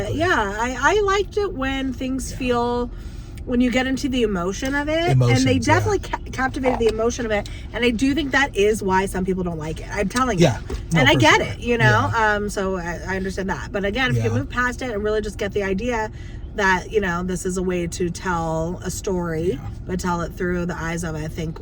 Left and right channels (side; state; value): both; identical; correlation 1.00